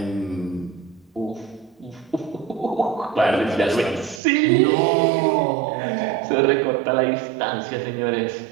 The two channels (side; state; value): left; drops out; at 4.2 s